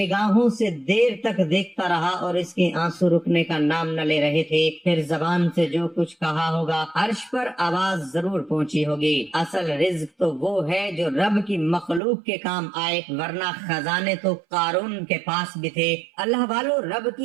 से देर तक देखता रहा और इसके आंसू रुकने का नाम न ले रहे थे। फिर जबान से जो कुछ कहा होगा, अर्श पर आवाज जरूर पहुंची होगी। असल रिज्क तो वो है जो रब की मखलूक के काम आए, वरना खजाने तो कारून के पास भी थे। अल्लाह वालों, रब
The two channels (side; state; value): left; drops out; at 12.0 s